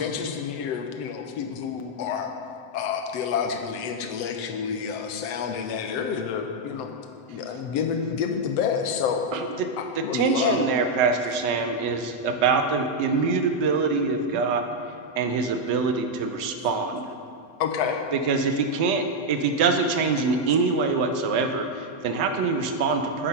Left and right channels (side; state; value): right; late; 7.9 ms